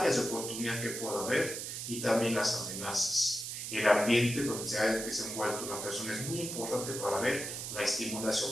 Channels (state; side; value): noise; right; hiss, 6 dB below the sound